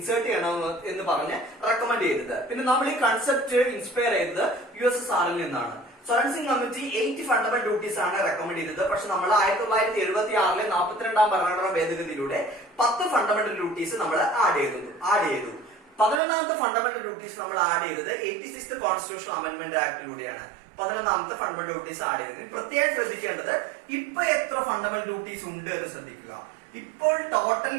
ചെയ്യണം എന്ന് പറഞ്ഞ് റെക്കമെൻഡ് ചെയ്തത്. പിന്നെ നമ്മൾ ഈ കൺസെപ്റ്റ് ഇൻസ്പയർ ചെയ്തത് USSRൽ നിന്നാണ്. Swaran Singh committee 8 fundamental duties ആണ് റെക്കമെൻഡ് ചെയ്തത്. പക്ഷെ നമ്മൾ 1976 42ാം ഭരണഘടനാ ഭേദഗതിയിലൂടെ 10 ഫണ്ടമെന്റൽ ഡ്യൂട്ടീസ് നമ്മൾ ആഡ് ചെയ്തു. 11ാമത്തെ ഫണ്ടമെന്റൽ ഡ്യൂട്ടീസ് നമ്മൾ ആഡ് ചെയ്തത് 86th കോൺസ്റ്റിറ്റ്യൂഷൻ അമെന്റ്മെന്റ് ആക്ടിലൂടെയാണ് 11ാമത്തെ ഫണ്ടമെന്റൽ ഡ്യൂട്ടീസ് ആഡ് ചെയ്തത്. പ്രത്യേകം ശ്രദ്ധിക്കേണ്ടത് ഇപ്പൊ എത്ര ഫണ്ടമെന്റൽ ഡ്യൂട്ടീസ് ഉണ്ട് എന്ന് ശ്രദ്ധിക്കുക. ഇപ്പോൾ ടോട്ടൽ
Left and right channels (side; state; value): left; drops out; at 16.2 s